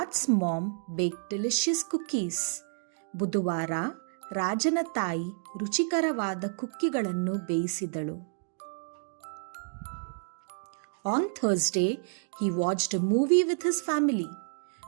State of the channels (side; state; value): left; silent; digital silence